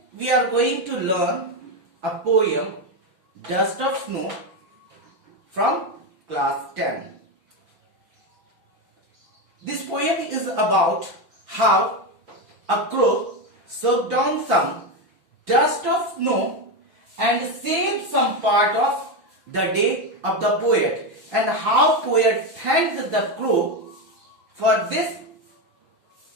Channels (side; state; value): left; late; 5.9 ms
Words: we are going to learn a poem, Dust of Snow, from class 10. This poem is about how a crow soaked down some dust of snow and saved some part of the day of the poet, and how poet thanked the crow for this